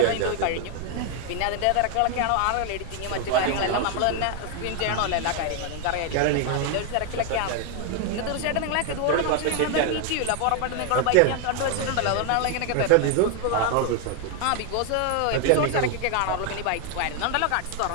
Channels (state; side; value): different; both; correlation 0.01